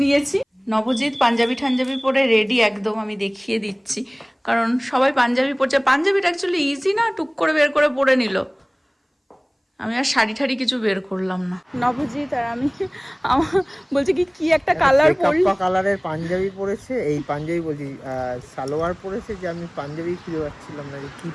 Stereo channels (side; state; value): both; identical; correlation 1.00